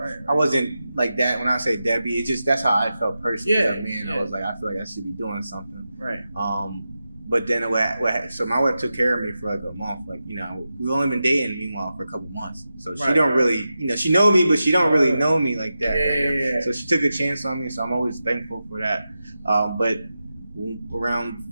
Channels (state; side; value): inverted; both; correlation -0.91